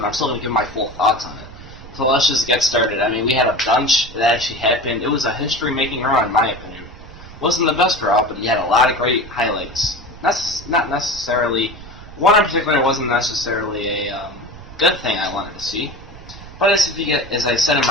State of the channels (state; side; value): noise; right; rumble, 16 dB below the sound